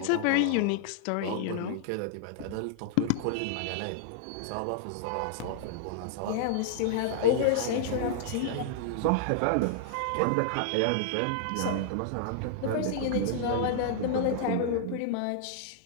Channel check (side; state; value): both; different; correlation -0.01